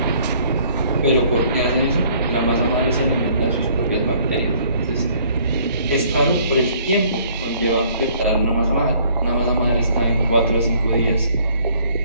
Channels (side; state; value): both; inverted; correlation -0.59